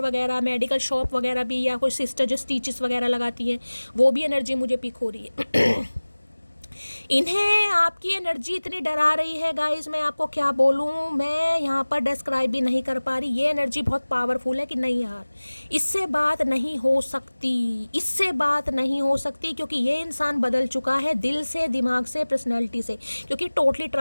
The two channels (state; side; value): inverted; both; correlation -1.00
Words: वगैरह, मेडिकल शॉप वगैरह भी, या कोई सिस्टर जो स्टिचेस वगैरह लगाती हैं, वो भी एनर्जी मुझे पिक हो रही है। इन्हें आपकी एनर्जी इतनी डरा रही है गाइस, मैं आपको क्या बोलूँ, मैं यहाँ पर डिस्क्राइब भी नहीं कर पा रही। ये एनर्जी बहुत पावरफुल है कि नहीं यार, इससे बात नहीं हो सकती, इससे बात नहीं हो सकती, क्योंकि ये इंसान बदल चुका है दिल से, दिमाग से, पर्सनैलिटी से, क्योंकि टोटली